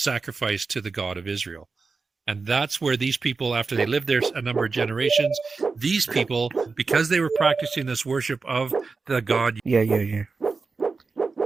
to the God of Israel. And that's where these people, after they lived there a number of generations, these people, because they were practicing this worship of the God. Yeah.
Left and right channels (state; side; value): quieter; left; 4.4 dB